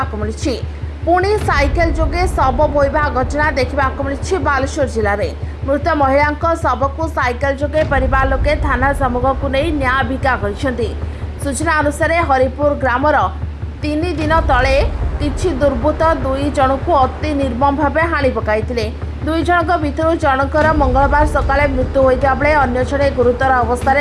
मिली। पुणी साइकेल जोगे शव बोईबा घटना देखा मिली। बालेश्वर जिले में मृत महिला शव को साइकेल जोगे परिवार लोके थाना सम्मुख को नहीं न्याय भिका कर। सूचना अनुसार हरिपुर ग्रामर 3 दिन तले किछि दुर्बृत्त 2 जन को अति निर्मम भाव हाणि पकाई। 2 जनक भितर जनकर मंगलवार सकाळे मृत्यु होता बेले अन्य जड़े गुरुतर अवस्था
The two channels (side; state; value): both; identical; correlation 1.00